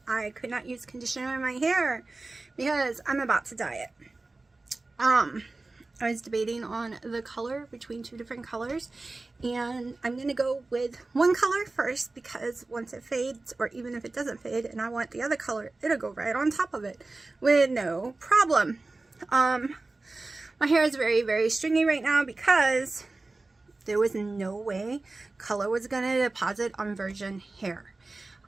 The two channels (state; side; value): quieter; left; 3.3 dB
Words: I could not use conditioner in my hair because I'm about to dye it. I was debating on the color between two different colors, and I'm going to go with one color first because once it fades, or even if it doesn't fade and I want the other color, it'll go right on top of it with no problem. My hair is very, very stringy right now because there was no way color was going to deposit on virgin hair.